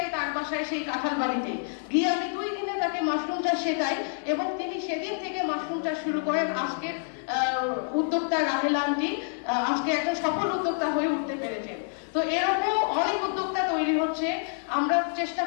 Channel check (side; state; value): right; silent; digital silence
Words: তার বাসায়, সেই কাঁঠাল বাড়িতে গিয়ে আমি 2 দিনে তাকে মাশরুম চাষ শেখাই এবং তিনি সেদিন থেকে মাশরুম চাষ শুরু করেন। আজকের উদ্যোক্তা রাহেলা আন্টি আজকে একটা সফল উদ্যোক্তা হয়ে উঠতে পেরেছেন। তো এরকম অনেক উদ্যোক্তা তৈরি হচ্ছে, আমরা চেষ্টা